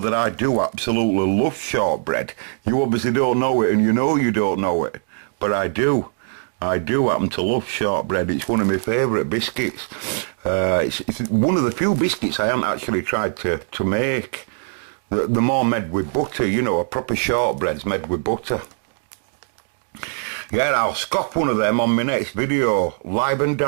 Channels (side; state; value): left; silent; 63 dB below the other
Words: that I do absolutely love shortbread. You obviously don't know it, and you know you don't know it. But I do. I do happen to love shortbread. It's one of my favourite biscuits. It's one of the few biscuits I haven't actually tried to make. They're more made with butter, you know, a proper shortbread's made with butter. Yeah, I'll scop one of them on my next video. Live and